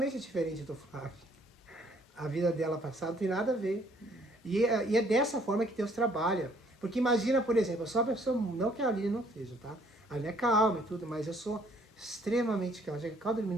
diferente do Flávio. A vida dela passada não tem nada a ver. E é dessa forma que Deus trabalha. Porque imagina, por exemplo, eu sou uma pessoa, não que a Aline não seja, tá? A Aline é calma e tudo, mas eu sou extremamente calma. Já que calma dormir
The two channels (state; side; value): normal; both; correlation 0.62